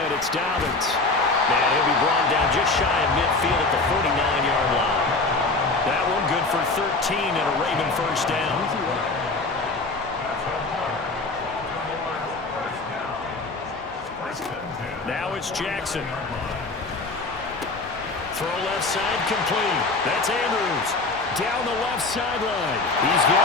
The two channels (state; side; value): quieter; right; 3.4 dB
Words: it's Dobbins. And he'll be brought down just shy of midfield at the 49-yard line. That one good for 13 and a Raven first down. Now it's Jackson. Throw left side complete. That's Andrews. Down the left sideline. He's got